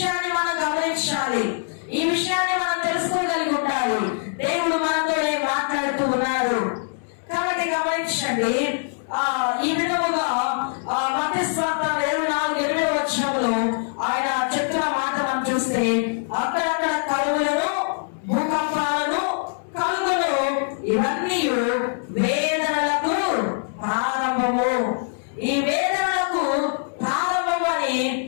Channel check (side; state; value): right; silent; digital silence